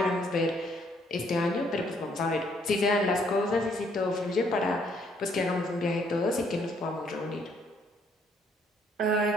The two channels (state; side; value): normal; both; correlation 0.67